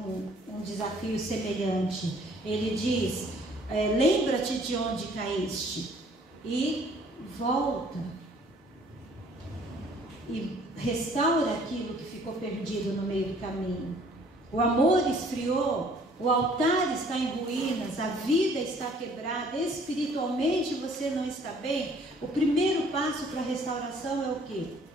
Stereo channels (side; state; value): both; normal; correlation 0.58